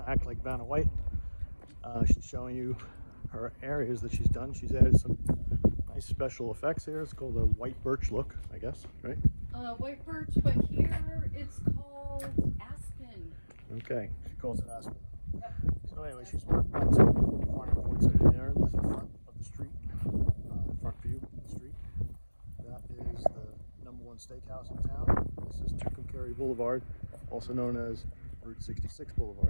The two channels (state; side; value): inverted; both; correlation -1.00